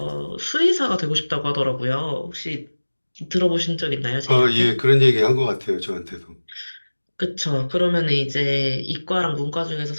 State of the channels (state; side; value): inverted; both; correlation -1.00